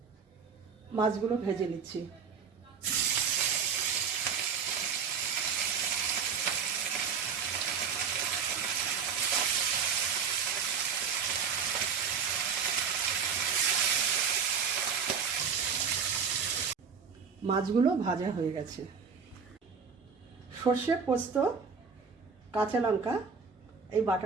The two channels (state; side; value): quieter; left; 6.2 dB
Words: মাছগুলো ভেজে নিচ্ছি। মাছগুলো ভাজা হয়ে গেছে। সর্ষে, পোস্ত, কাঁচা লঙ্কা এই